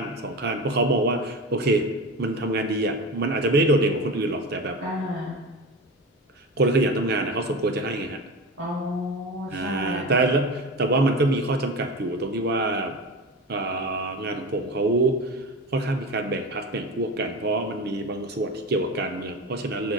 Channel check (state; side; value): normal; both; correlation 0.27